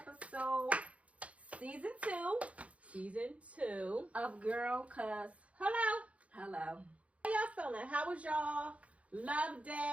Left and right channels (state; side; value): late; left; 0.064 ms